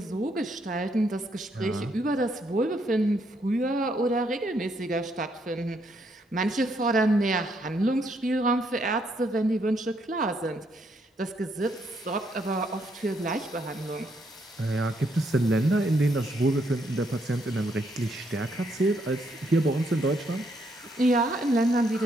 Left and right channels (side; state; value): both; normal; correlation 0.74